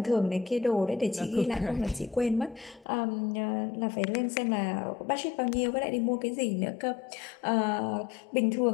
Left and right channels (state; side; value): drops out; right; at 2.9 s